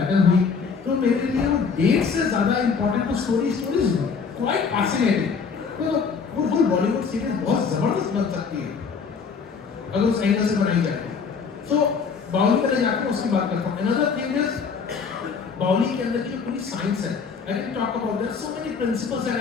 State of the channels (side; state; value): right; quieter; 5.6 dB